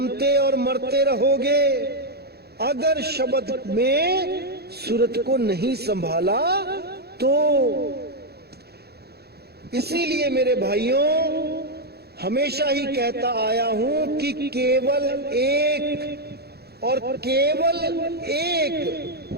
और मरते रहोगे। अगर शब्द में सूरत को नहीं संभाला तो इसीलिए मेरे भाइयों हमेशा ही कहता आया हूं कि केवल एक और केवल एक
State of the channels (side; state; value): left; late; 0.47 ms